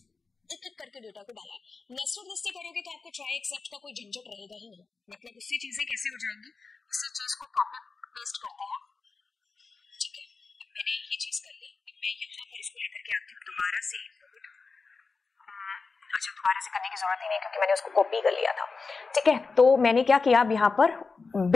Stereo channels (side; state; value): right; quieter; 4.4 dB